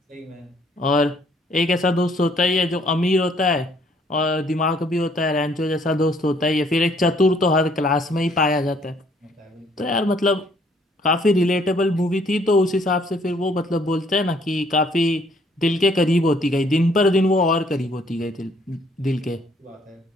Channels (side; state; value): both; normal; correlation 0.63